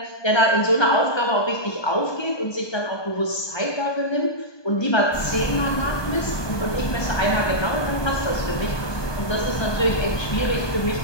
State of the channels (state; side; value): late; right; 1.2 ms